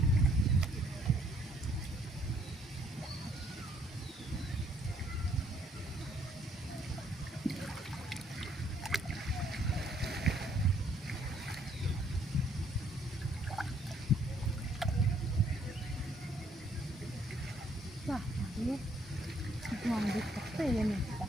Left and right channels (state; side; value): normal; both; correlation 0.66